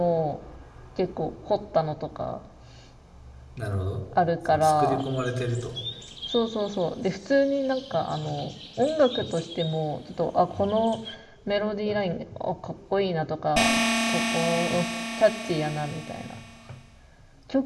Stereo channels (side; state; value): both; identical; correlation 1.00